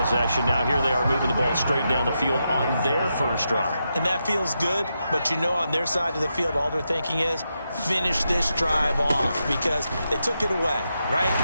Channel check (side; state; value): both; inverted; correlation -0.85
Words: Now here they are moving the ball straight down the field on their first drive. And that feels good, but you know on their side of the field all they're thinking is finish this drive off because they took it away, right?